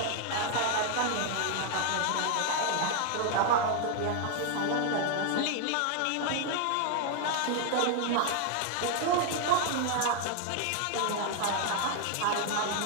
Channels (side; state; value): both; different; correlation 0.00